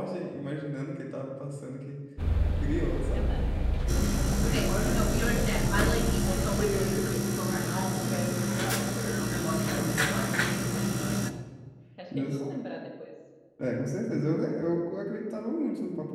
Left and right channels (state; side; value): identical; both; correlation 1.00